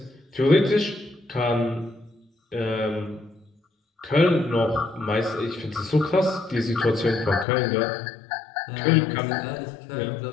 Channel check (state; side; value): drops out; right; at 7.5 s